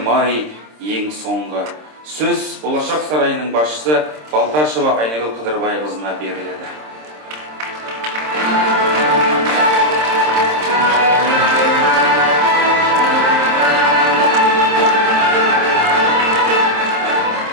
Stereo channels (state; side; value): late; left; 26 ms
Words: ай ең соңғы. Сөз Болашақ сарайының басшысы Балташева Айнагүл Қыдырбайқызына беріледі.